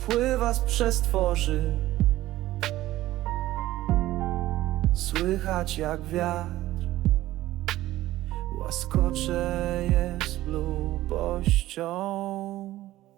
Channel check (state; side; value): quieter; left; 15.6 dB